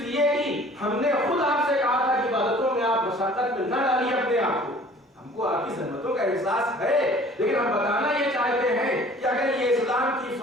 کہ ہم نے خود آپ سے کہا تھا کہ عبادتوں میں آپ مشقت میں نہ ڈالیے اپنے آپ کو. ہم کو آپ کی زحمتوں کا احساس ہے, لیکن ہم بتانا یہ چاہتے ہیں کہ اگر یہ اسلام کی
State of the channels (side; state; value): both; normal; correlation 0.50